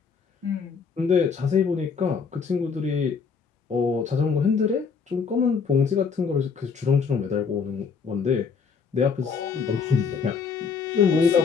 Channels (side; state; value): right; quieter; 5.6 dB